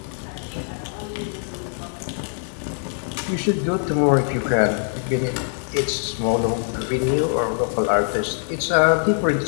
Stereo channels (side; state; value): right; silent; 63 dB below the other